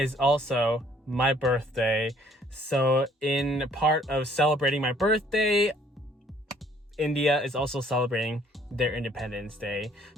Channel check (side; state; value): both; normal; correlation 0.60